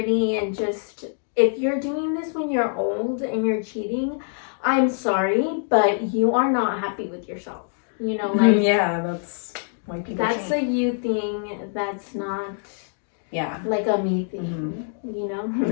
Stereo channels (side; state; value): right; silent; digital silence